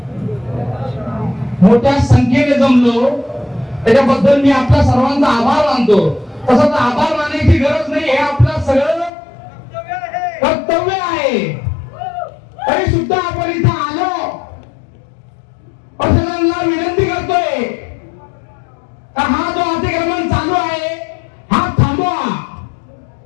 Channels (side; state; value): right; drops out; at 9.1 s